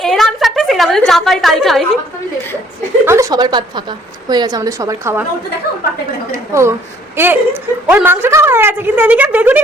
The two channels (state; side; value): normal; both; correlation 0.61